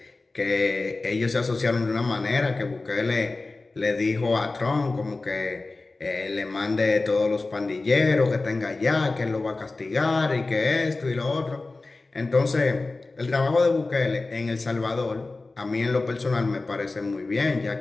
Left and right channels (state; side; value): quieter; right; 3.4 dB